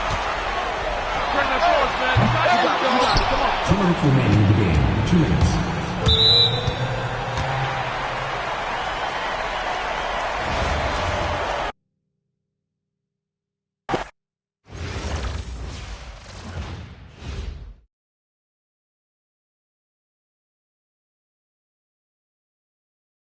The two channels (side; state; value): both; identical; correlation 1.00